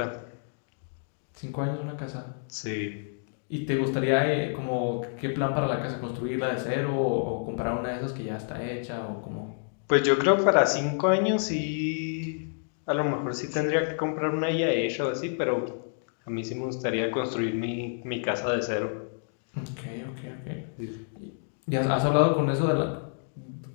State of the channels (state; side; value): silent; right; digital silence